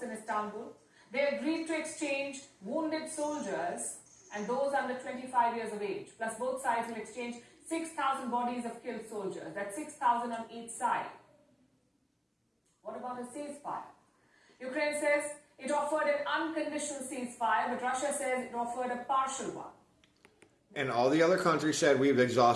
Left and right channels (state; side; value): identical; both; correlation 1.00